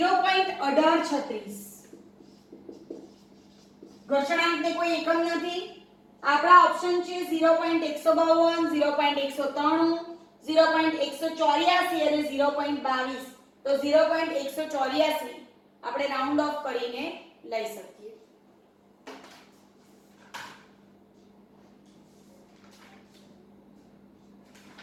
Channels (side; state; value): both; identical; correlation 1.00